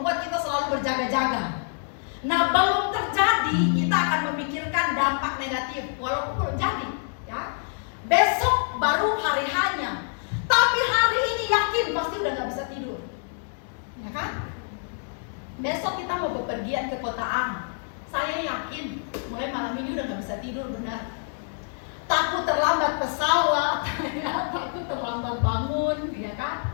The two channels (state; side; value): silent; right; 61 dB below the other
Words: kita selalu berjaga-jaga. Nah, belum terjadi kita akan memikirkan dampak negatif, walaupun belum jadi, ya. Besok baru hari hanya, tapi hari ini yakin pasti udah nggak bisa tidur, ya kan? Besok kita mau bepergian ke kota A, saya yakin mulai malam ini udah nggak bisa tidur, benar. Takut terlambat pesawat, ya, takut terlambat bangun, ya